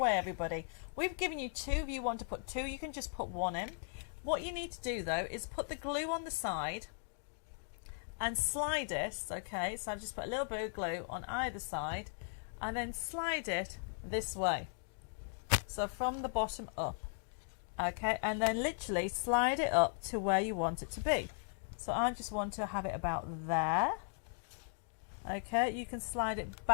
everybody. We've given you two. If you want to put two, you can just put one in. What you need to do, though, is put the glue on the side and slide it, okay, so I've just put a little bit of glue on either side and then slide it this way, so from the bottom up, okay, and then literally slide it up to where you want it to be. So I just want to have it about there, okay. You can slide it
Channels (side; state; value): right; silent; digital silence